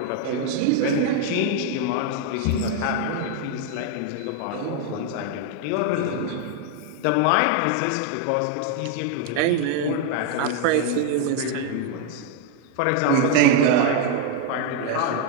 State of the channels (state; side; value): different; both; correlation 0.00